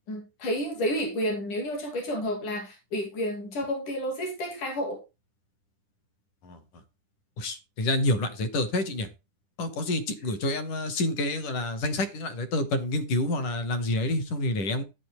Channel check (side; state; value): right; late; 10 ms